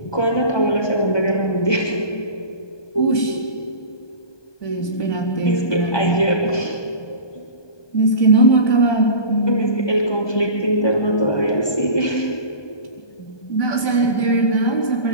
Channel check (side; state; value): right; late; 1.2 ms